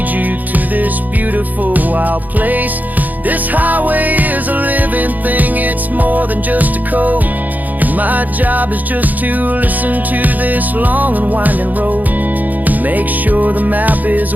you to this beautiful wild place. This highway is a living thing, it's more than just a code. And my job is just to listen to this long and winding road and make sure the map is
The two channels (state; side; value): late; left; 0.082 ms